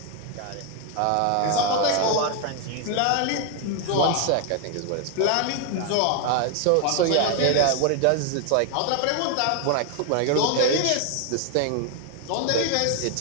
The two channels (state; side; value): different; both; correlation 0.00